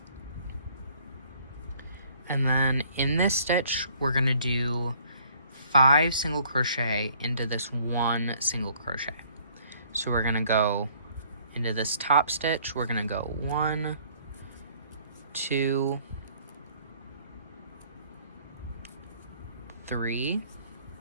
And then in this stitch, we're going to do 5 single crochet into this 1 single crochet. So we're going to go into this top stitch, we're going to go 1, 2, 3,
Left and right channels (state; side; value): inverted; both; correlation -0.60